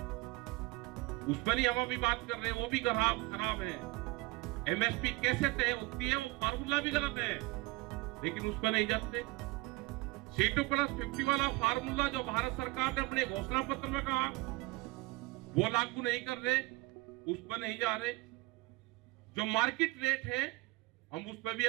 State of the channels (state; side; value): quieter; left; 22.4 dB